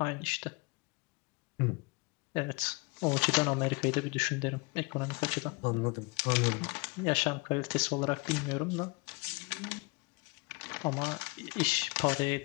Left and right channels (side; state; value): right; quieter; 28.5 dB